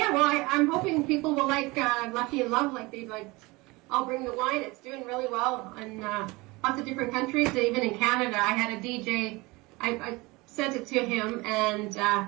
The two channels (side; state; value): left; quieter; 23.4 dB